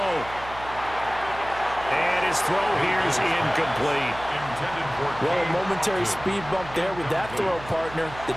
And his throw here is incomplete. Well, a momentary speed bump there with that throw, partner. The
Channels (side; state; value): right; noise; hum, 15 dB below the sound